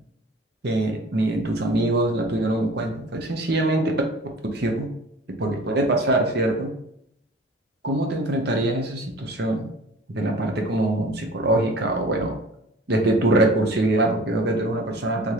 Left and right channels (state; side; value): normal; both; correlation 0.44